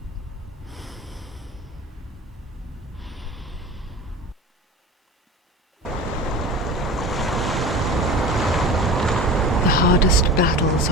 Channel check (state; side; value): normal; both; correlation 0.34